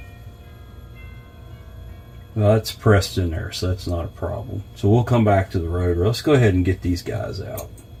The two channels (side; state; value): both; identical; correlation 1.00